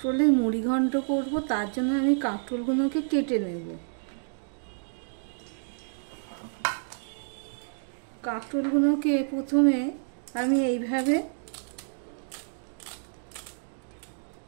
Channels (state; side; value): silent; left; digital silence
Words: মুড়ি ঘন্ট করব, তার জন্য আমি কাঁকরোলগুলোকে কেটে নেব। কাঁকরোলগুলোকে প্রথমে আমি এইভাবে